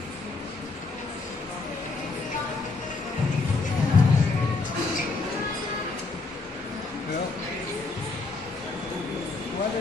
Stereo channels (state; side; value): quieter; right; 3.8 dB